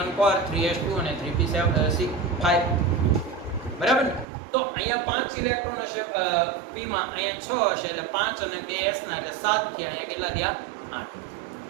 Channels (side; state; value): left; drops out; at 4.2 s